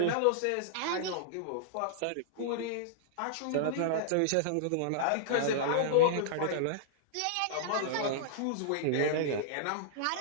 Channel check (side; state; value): both; different; correlation -0.02